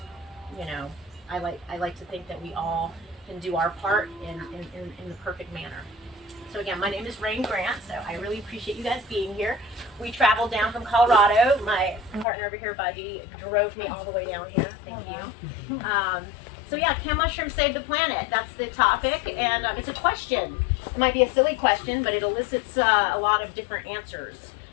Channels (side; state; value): right; drops out; at 12.2 s